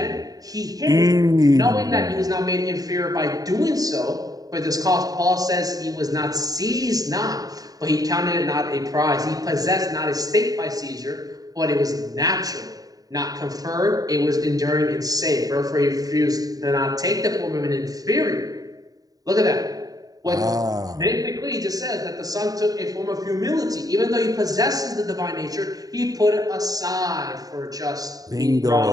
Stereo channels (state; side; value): late; left; 0.18 ms